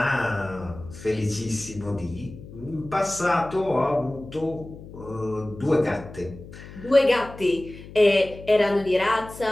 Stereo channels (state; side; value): noise; left; hum, 16 dB below the sound